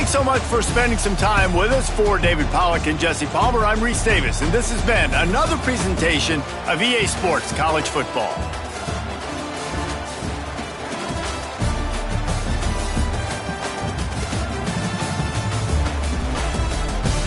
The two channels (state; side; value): identical; both; correlation 1.00